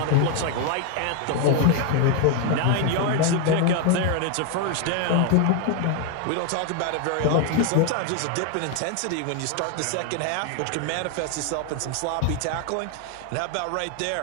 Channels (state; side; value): different; both; correlation 0.00